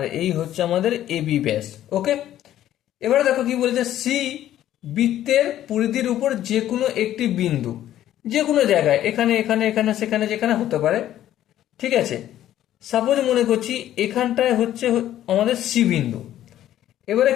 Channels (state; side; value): quieter; right; 12.4 dB